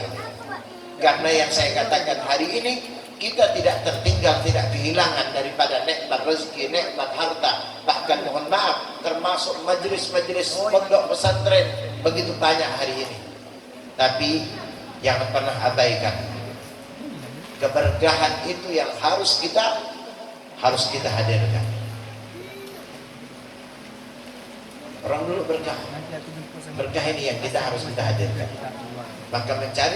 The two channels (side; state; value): both; identical; correlation 1.00